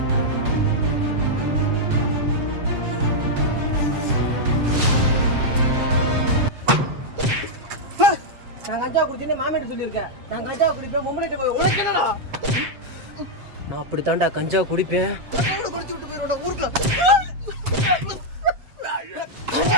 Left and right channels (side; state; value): left; late; 7.7 ms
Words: நான் கஞ்சா குடிச்சேன்னு மாமியார் சொல்லியிருக்கேன். நான் கஞ்சா குடிப்பேன் மொம்மனிட்ட போய் உனக்கு என்னடா? நான் அப்படித்தான்டா கஞ்சா குடிப்பேன். குடிச்சு விட்டு போயிருவேன் ஊருக்குள்ள.